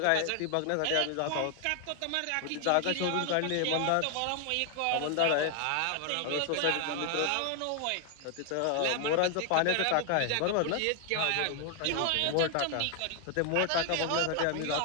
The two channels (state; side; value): different; both; correlation 0.00